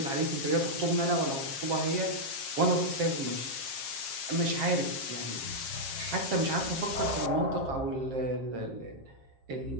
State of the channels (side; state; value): left; late; 7.4 ms